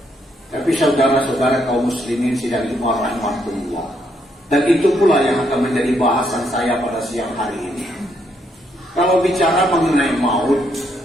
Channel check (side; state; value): both; normal; correlation 0.75